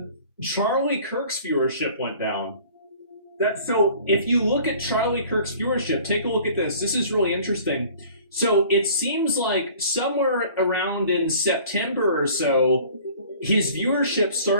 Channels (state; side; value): inverted; both; correlation -0.49